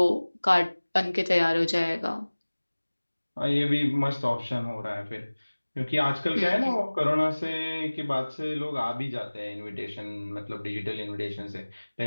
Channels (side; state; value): both; inverted; correlation -1.00